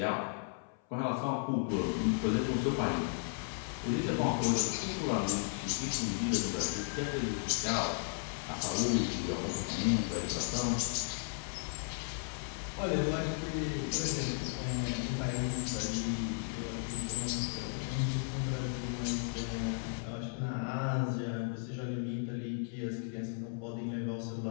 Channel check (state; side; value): silent; right; 54 dB below the other